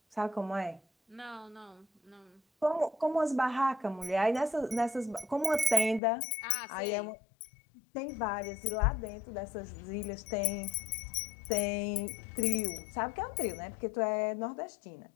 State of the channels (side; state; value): right; drops out; at 6.0 s